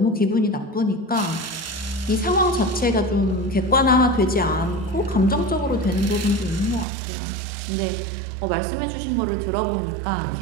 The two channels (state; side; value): drops out; left; at 6.9 s